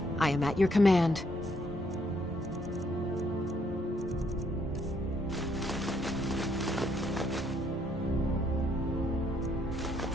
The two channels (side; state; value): both; normal; correlation 0.71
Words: I am at your command.